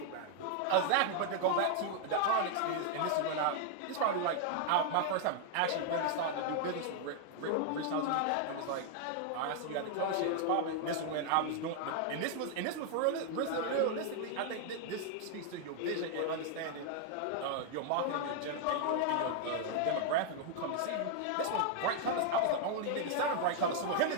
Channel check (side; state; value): both; different; correlation 0.00